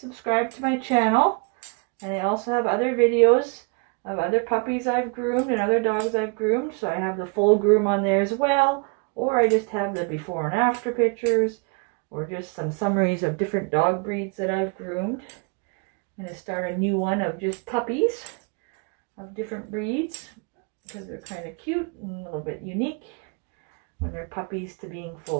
subscribe to my channel. And I also have other videos of other puppies I've groomed and other dogs I've groomed. So I have the full groom on there as well. Or I just have the before and after pictures. Or just some summaries of different dog breeds that I've groomed. I'm going to start a new one of just puppies of different breeds. Because they're kind of cute and a little bit unique when they're puppies to being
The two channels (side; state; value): left; quieter; 33.5 dB